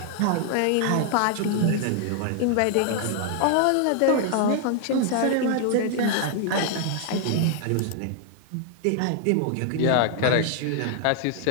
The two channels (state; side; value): different; both; correlation 0.00